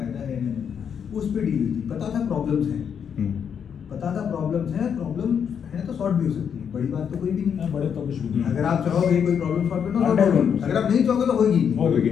है या नहीं, उस पर डील हुई थी। पता था प्रॉब्लम्स हैं, पता था प्रॉब्लम्स हैं, प्रॉब्लम है तो सॉर्ट भी हो सकती है, बड़ी बात तो कोई भी नहीं है, बड़े तो कुछ भी नहीं। अगर आप चाहोगे कोई प्रॉब्लम सॉल्व करना सॉल्व होगी, अगर आप नहीं चाहोगे तो होगी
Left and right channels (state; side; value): quieter; right; 7.6 dB